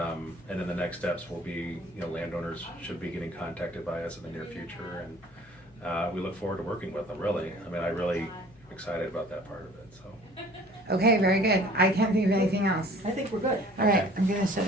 then the next steps will be, you know, landowners should be getting contacted by us in the near future, and we look forward to working with them, really. I mean, I really am excited about that part of it, so. Okay, very good. I can't think of anything else. I think we're good. All right, I'm gonna shut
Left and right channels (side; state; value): left; noise; hum, 27 dB below the sound